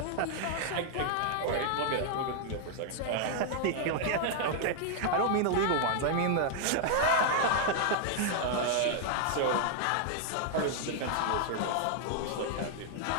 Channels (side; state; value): both; different; correlation 0.00